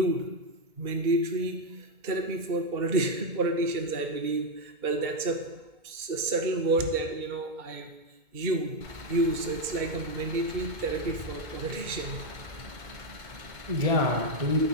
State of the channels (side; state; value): left; late; 2.2 ms